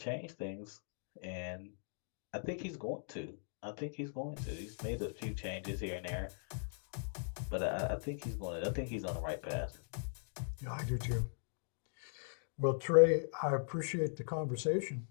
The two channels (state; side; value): silent; right; digital silence